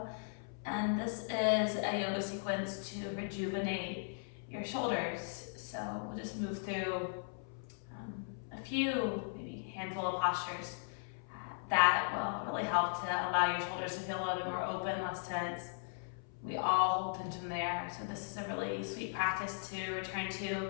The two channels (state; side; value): silent; right; 53 dB below the other